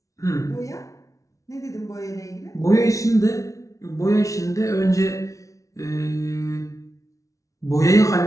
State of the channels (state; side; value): late; right; 0.16 ms